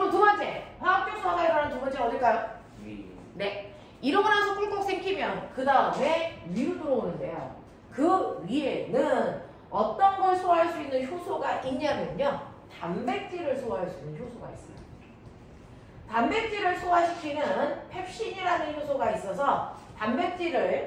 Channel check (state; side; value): identical; both; correlation 1.00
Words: 두 번째, 화학적 소화가 일어나는 두 번째는 어딜까요? 네. 이러고 나서 꿀꺽 생기면 그 다음에 위로 들어오는데요. 그 위에는 어떤 걸 소화할 수 있는 효소가 있냐면요. 단백질을 소화할 수 있는 효소가 있어요. 단백질을 소화시키는 펩신이라는 효소가 있어서